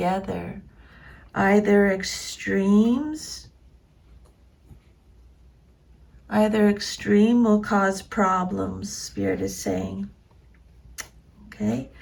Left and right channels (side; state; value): both; identical; correlation 1.00